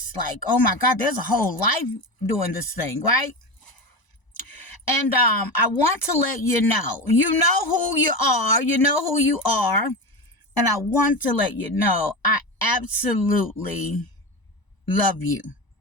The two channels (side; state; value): right; late; 1.0 ms